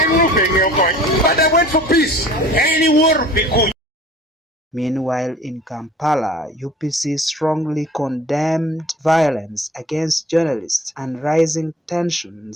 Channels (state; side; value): normal; both; correlation 0.48